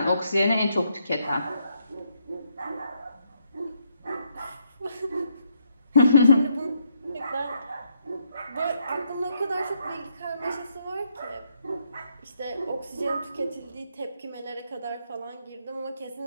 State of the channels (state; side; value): inverted; both; correlation -0.76